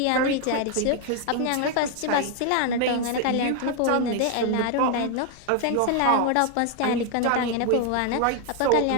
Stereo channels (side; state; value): both; different; correlation 0.00